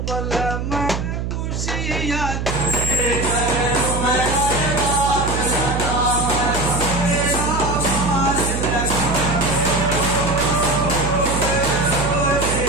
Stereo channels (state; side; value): noise; right; hum, 3 dB below the sound